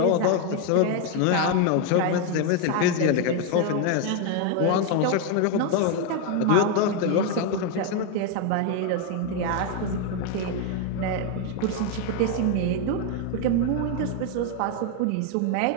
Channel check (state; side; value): different; both; correlation 0.01